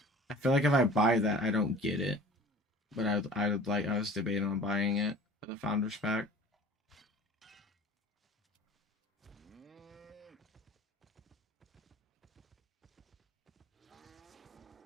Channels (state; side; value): normal; both; correlation 0.44